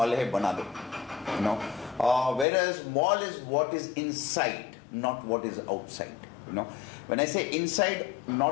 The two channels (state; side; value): drops out; right; at 2.5 s